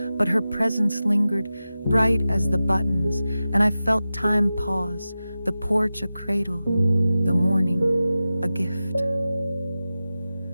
but her presence lingered, bright as the buttons, and I felt time pause, the porch a cradle, the morning a gift.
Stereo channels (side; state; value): both; inverted; correlation -0.94